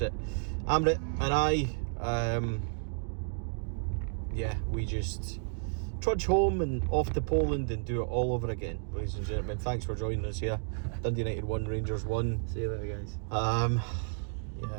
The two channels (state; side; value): silent; left; 57 dB below the other